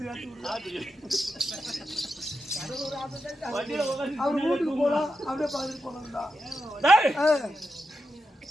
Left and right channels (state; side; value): normal; both; correlation 0.88